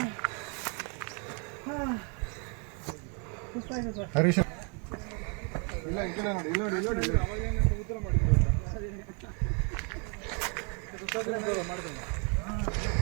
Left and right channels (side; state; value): left; quieter; 36.5 dB